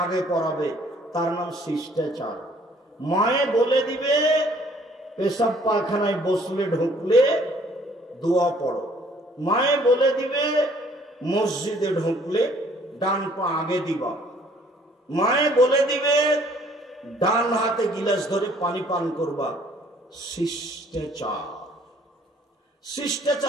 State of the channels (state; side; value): normal; both; correlation 0.59